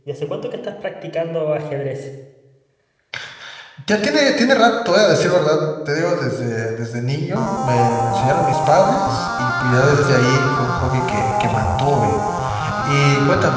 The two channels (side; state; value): both; identical; correlation 1.00